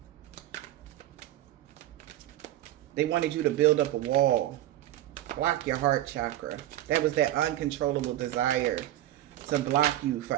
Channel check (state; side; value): quieter; left; 13.9 dB